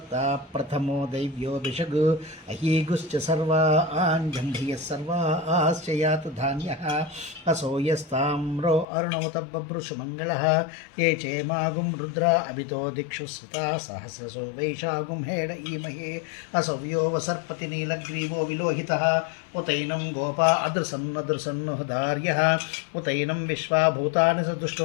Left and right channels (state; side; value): drops out; right; at 8.8 s